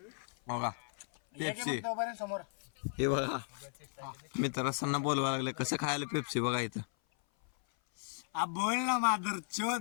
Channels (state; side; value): silent; right; 54 dB below the other